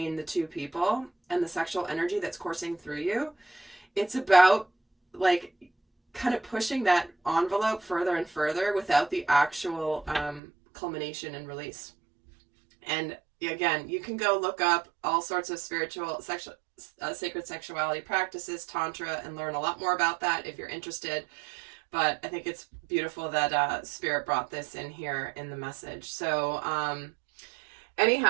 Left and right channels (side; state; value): left; drops out; at 10.4 s